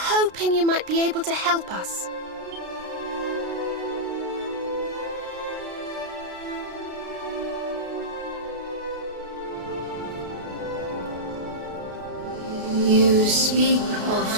you might be able to help us. You speak of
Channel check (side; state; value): left; late; 33 ms